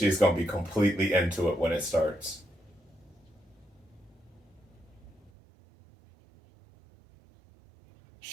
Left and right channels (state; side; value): drops out; left; at 5.3 s